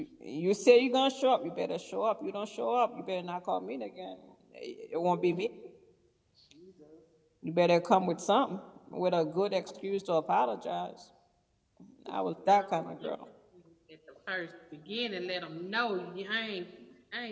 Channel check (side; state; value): both; identical; correlation 1.00